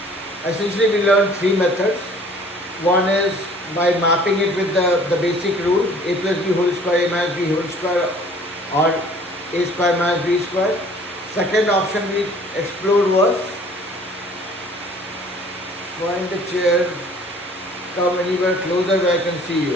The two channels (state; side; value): normal; both; correlation 0.53